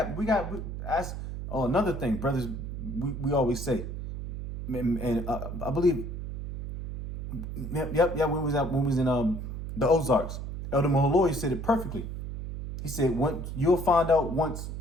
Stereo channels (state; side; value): noise; right; hum, 7 dB below the sound